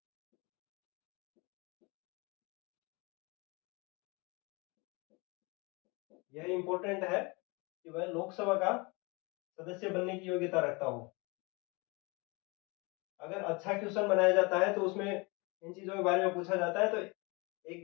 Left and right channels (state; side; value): quieter; right; 27.9 dB